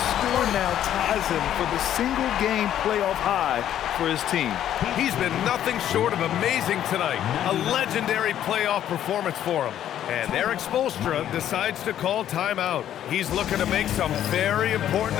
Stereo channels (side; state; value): right; quieter; 11.0 dB